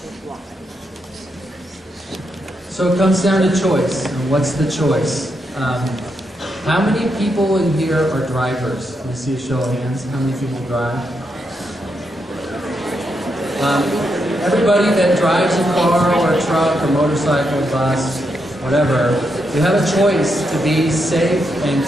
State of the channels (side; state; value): both; normal; correlation 0.82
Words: So it comes down to choice. And what's the choice? How many people in here are drivers? Can I see a show of hands? How many people drive? Everybody that drives a car or a truck or motorcycle, bus, whatever, you have a choice to be safe and